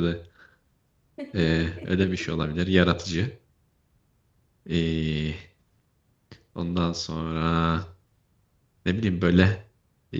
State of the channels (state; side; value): identical; both; correlation 1.00